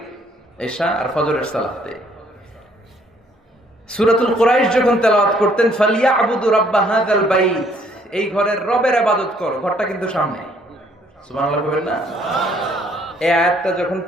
এশা আর ফজরের সালাতে। সূরাতুল কুরাইশ যখন তেলাওয়াত করতেন, ফালিয়াবুদু রাব্বা হাযাল বাইত, এই ঘরের রবের ইবাদত করো, ঘরটা কিন্তু সামনে। সুবহানাল্লাহ বলেন না? এই আয়াতটা যখন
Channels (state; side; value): normal; both; correlation 0.64